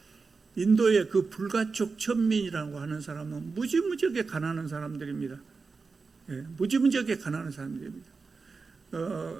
인도의 그 불가촉 천민이라고 하는 사람은 무지무지하게 가난한 사람들입니다. 무지무지하게 가난한 사람들입니다.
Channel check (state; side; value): quieter; left; 4.5 dB